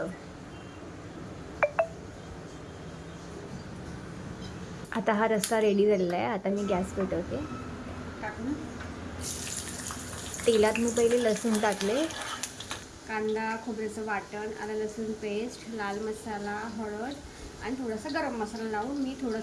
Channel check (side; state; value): both; identical; correlation 1.00